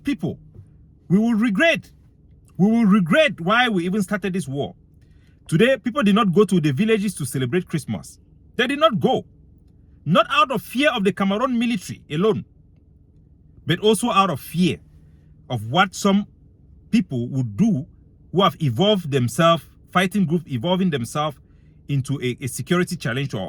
people, we will regret. We will regret why we even started this war. Today, people did not go to the villages to celebrate Christmas. They did not go. Not out of fear of the Cameroon military alone, but also out of fear of what some people would do who have evolved themselves, fighting groups evolving themselves into a security challenge to our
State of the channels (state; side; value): identical; both; correlation 1.00